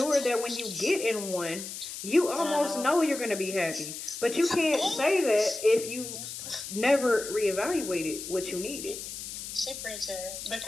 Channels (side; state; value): left; noise; hiss, 8 dB below the sound